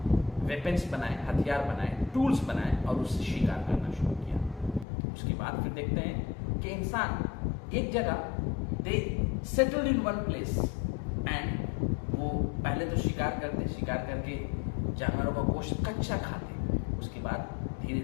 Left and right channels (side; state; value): right; drops out; at 4.9 s